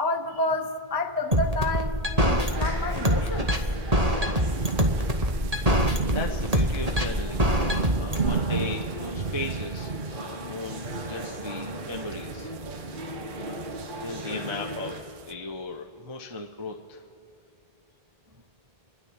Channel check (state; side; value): late; left; 1.8 ms